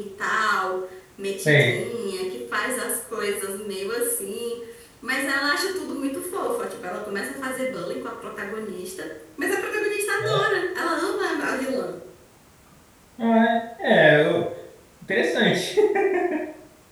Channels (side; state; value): both; identical; correlation 1.00